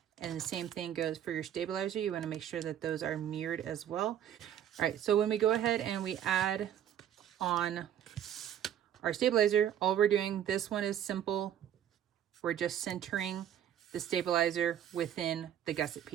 And the same thing goes for your stabilizer. You want to make sure that those are mirrored as well. All right, so when we go ahead and we add on our stabilizer, all we're doing, this one is simple. We're just centering the stabilizer within the gusset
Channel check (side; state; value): left; quieter; 10.2 dB